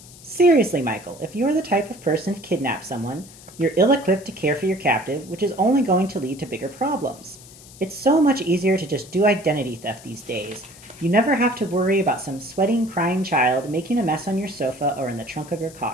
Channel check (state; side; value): noise; left; hiss, 20 dB below the sound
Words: Seriously, Michael, if you are the type of person to kidnap someone, you're ill equipped to care for your captive, which is only going to lead to bigger problems. It's so much easier to just do identity theft these days. You never have to worry about some sweating, crying child making a mess on your sofa or in the trunk of your